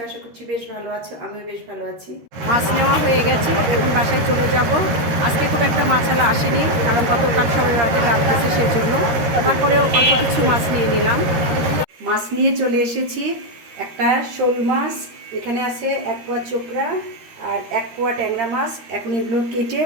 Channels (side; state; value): left; late; 13 ms